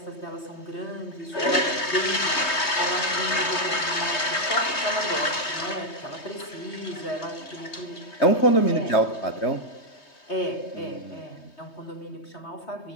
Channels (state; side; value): late; right; 3.2 ms